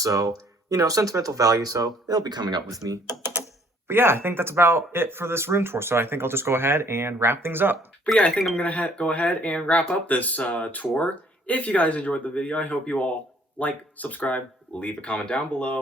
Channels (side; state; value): both; normal; correlation 0.60